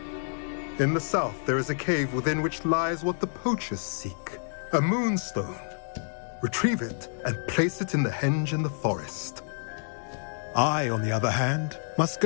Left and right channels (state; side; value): silent; right; digital silence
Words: In the south, there is a cave within which lies what the poachers seek. A moonstone. Retrieve it and place it in the henge in the forest. I, on the other hand, must